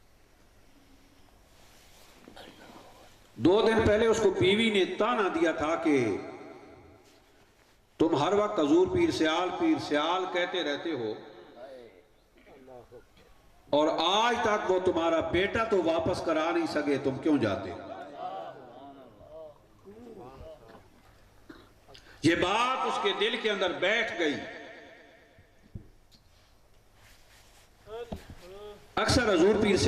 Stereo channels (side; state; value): both; identical; correlation 1.00